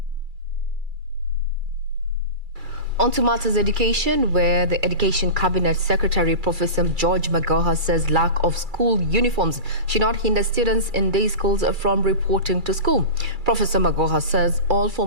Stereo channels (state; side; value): late; left; 2.3 ms